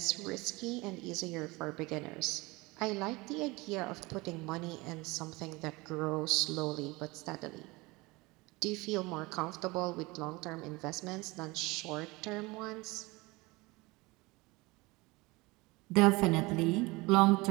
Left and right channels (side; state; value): left; quieter; 23.4 dB